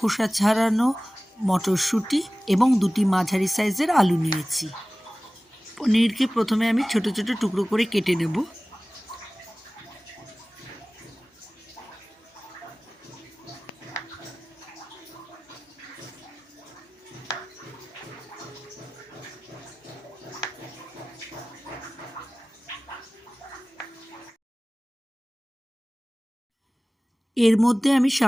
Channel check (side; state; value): both; normal; correlation 0.98